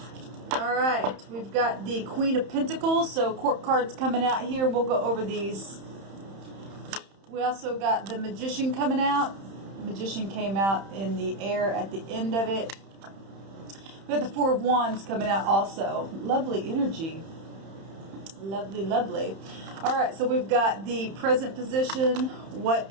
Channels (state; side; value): late; left; 31 ms